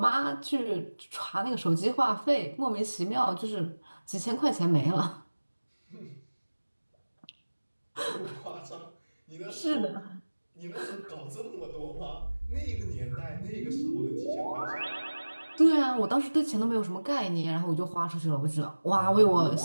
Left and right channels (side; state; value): both; inverted; correlation -1.00